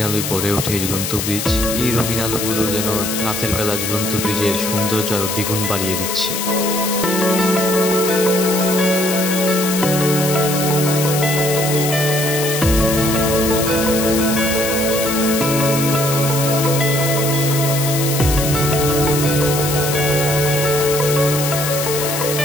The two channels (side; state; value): left; noise; hiss, 3 dB below the sound